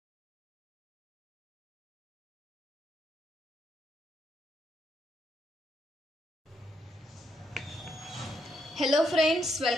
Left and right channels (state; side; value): normal; both; correlation 0.77